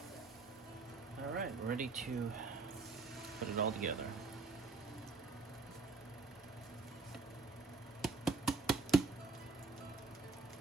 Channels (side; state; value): left; quieter; 4.1 dB